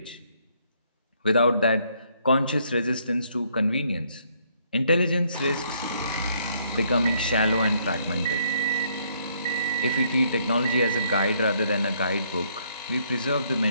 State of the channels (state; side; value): inverted; both; correlation -0.68